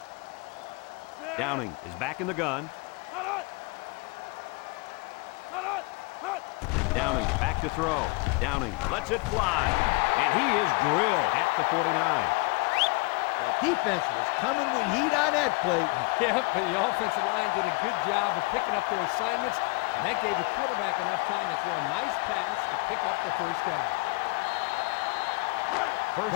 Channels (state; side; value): quieter; right; 27.2 dB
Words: Downing is back in the gun. Downing back to throw. Downing lets it fly. And he is drilled at the 49. The defense was coming with heat on that play. Yeah, but the offensive line did a good job of picking up their assignments, and that gave the quarterback enough time to throw a nice pass to pick up the first down.